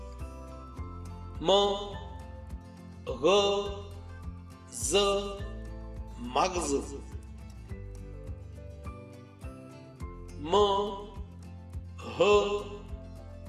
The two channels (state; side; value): identical; both; correlation 1.00